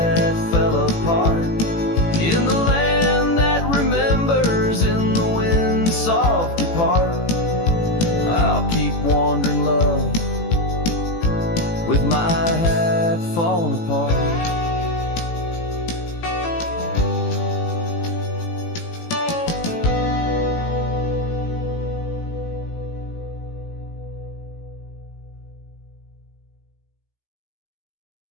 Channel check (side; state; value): right; late; 18 ms